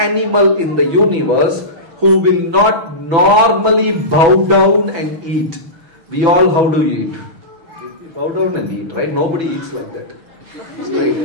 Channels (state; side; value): late; left; 6.0 ms